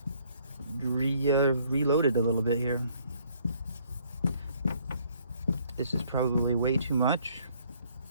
reload it a little bit here. This is probably way too much.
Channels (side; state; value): both; inverted; correlation -0.64